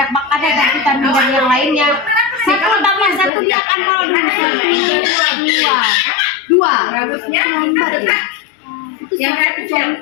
makanan dan vitamin dan yang lainnya. 1 tambah 1 dia akan kalau 2. Bagusnya lambat ya. Yang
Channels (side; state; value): right; drops out; at 3.3 s